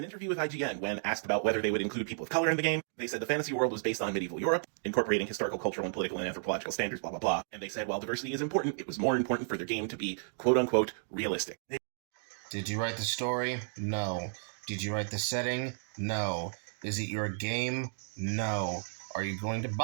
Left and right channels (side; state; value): left; silent; digital silence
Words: interview with IGN, when asked about whether they would include people of color in the game, they said the fantasy world was based on medieval Europe, incorporating historical, cultural, and political and anthropological standards, blah, blah, blah. And they said while diversity is important, it was more important for their game to be, quote-unquote, realistic. Did you write the story? No. Did you write the setting? No. Is it your game? No. Are you going to